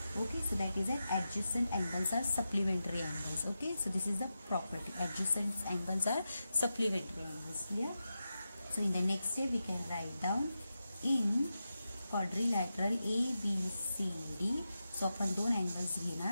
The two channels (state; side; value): inverted; both; correlation -0.90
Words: Okay. So that is adjacent angles are supplementary angles. Okay. So this is the property, adjacent angles are supplementary angles. Clear. So in the next step we can write down in quadrilateral ABCD. So आपण दोन angles